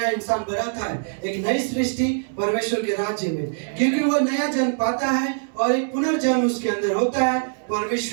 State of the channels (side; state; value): left; silent; digital silence